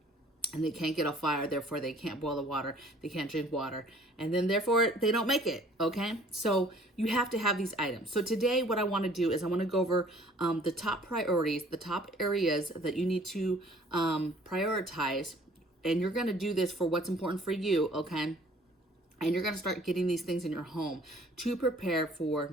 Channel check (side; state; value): both; normal; correlation 0.55